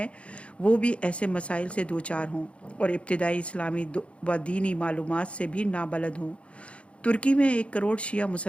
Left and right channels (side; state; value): right; late; 0.061 ms